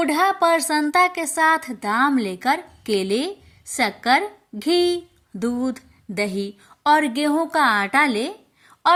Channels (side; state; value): both; identical; correlation 1.00